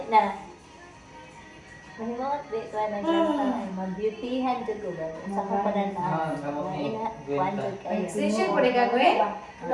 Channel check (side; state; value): both; identical; correlation 1.00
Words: na. Mahimot, di ko na ganta. Mag-beautyhan ko ko ba? Sa kapanan na. Ina, kuhan ko kayo. Extension po rin gagawin?